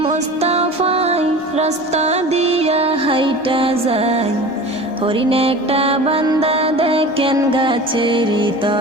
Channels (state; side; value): normal; both; correlation 0.37